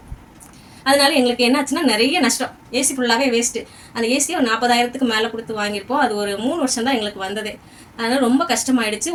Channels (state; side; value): identical; both; correlation 1.00